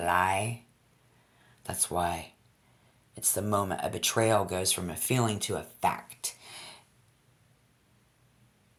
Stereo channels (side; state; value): both; identical; correlation 1.00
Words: That's why it's the moment a betrayal goes from a feeling to a fact.